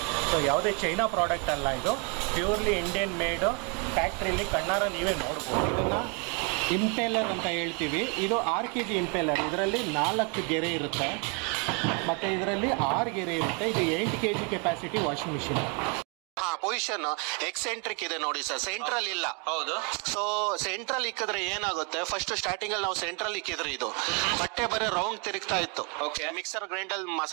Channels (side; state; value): left; quieter; 34.7 dB